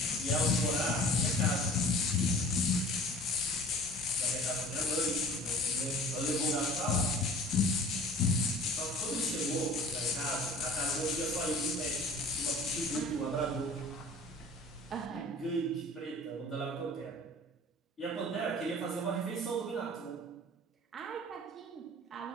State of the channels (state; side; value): normal; both; correlation 0.44